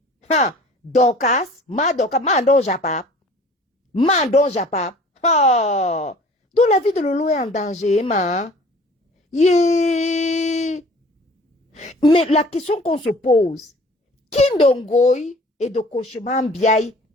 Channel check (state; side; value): normal; both; correlation 0.48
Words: Dorcas, Mando Japap, oh, donc la vie de Lolo est en danger, ma. Yeah. Mais la question qu'on se pose, Kindongoy et de Kocheman Biaï